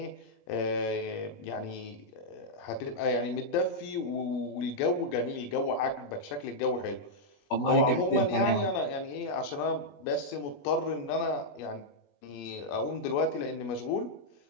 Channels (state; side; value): late; right; 21 ms